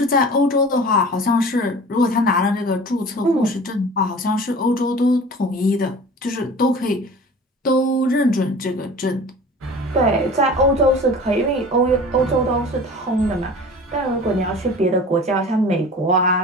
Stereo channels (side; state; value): both; normal; correlation 0.40